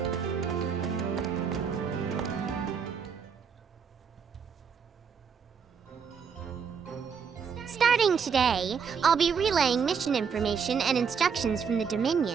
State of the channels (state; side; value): quieter; left; 6.5 dB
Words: Starting today, I'll be relaying mission information and instructions from the